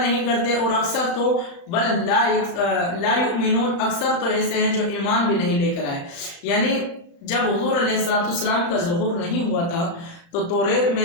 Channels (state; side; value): late; right; 35 ms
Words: کرتے، اور اکثر تو بل لا یؤمنون، اکثر تو ایسے ہیں جو ایمان بھی نہیں لے کر آئے۔ یعنی جب حضور علیہ السلام کا ظہور نہیں ہوا تھا تو توریت